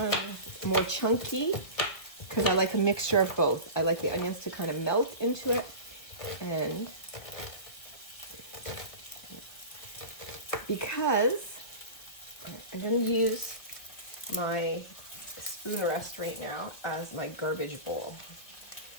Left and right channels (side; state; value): right; late; 1.7 ms